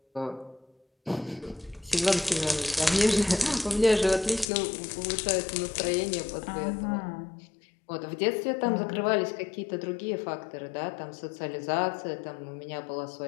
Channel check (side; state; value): right; drops out; at 4.5 s